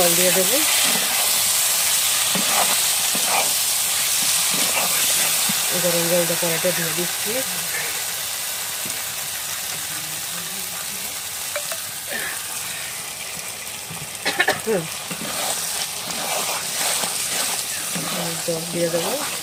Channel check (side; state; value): both; identical; correlation 1.00